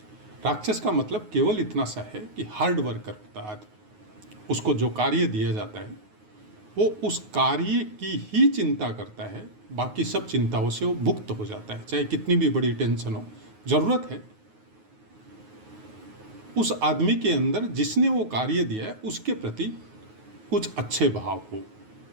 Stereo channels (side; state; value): left; late; 9.4 ms